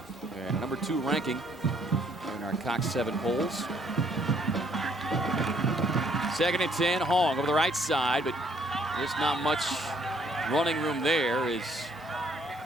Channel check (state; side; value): normal; both; correlation 0.65